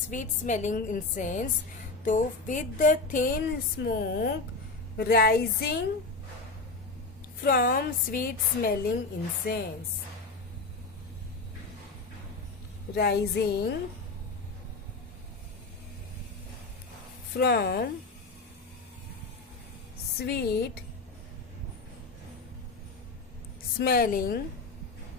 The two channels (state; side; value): quieter; right; 3.6 dB